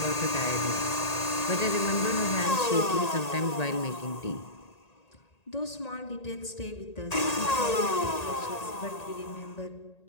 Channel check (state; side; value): late; right; 1.8 ms